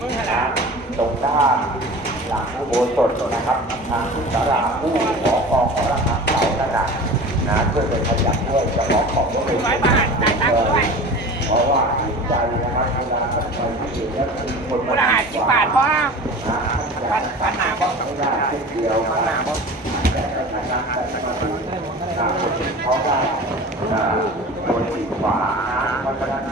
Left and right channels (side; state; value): both; normal; correlation 0.37